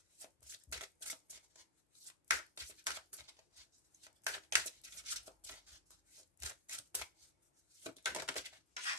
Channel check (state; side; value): normal; both; correlation -0.10